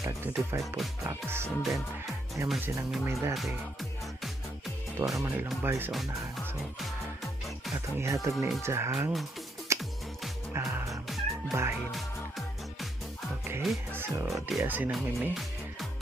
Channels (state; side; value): normal; both; correlation 0.76